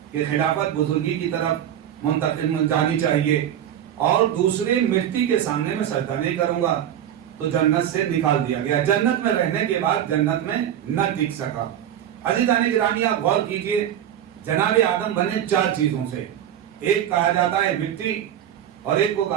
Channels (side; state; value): left; quieter; 10.5 dB